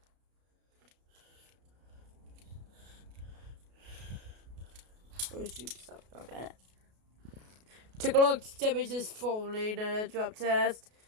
shoot, something like that. Take a look. Damage is falling in a drop test.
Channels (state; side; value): late; left; 33 ms